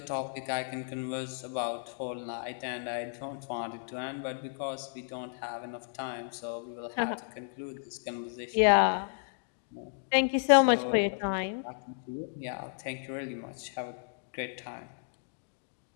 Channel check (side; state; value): right; silent; digital silence